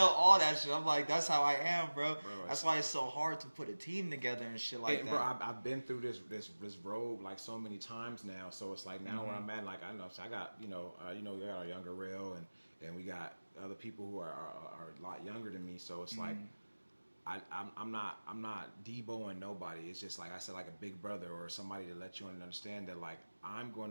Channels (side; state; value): both; inverted; correlation -1.00